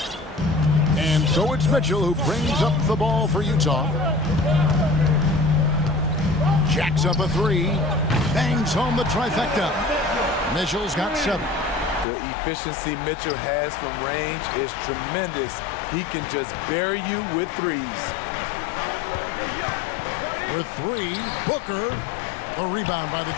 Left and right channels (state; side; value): drops out; right; at 12.1 s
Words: And so it's Mitchell who brings up the ball for Utah. Jacks up a 3. Bangs home the trifecta. Mitchell's got 7. The efficiency Mitchell has from range is tremendous. He can just bury you with 3s. For 3, Booker. A rebound by the